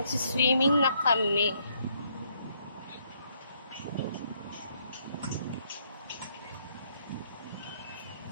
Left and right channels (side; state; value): both; inverted; correlation -0.71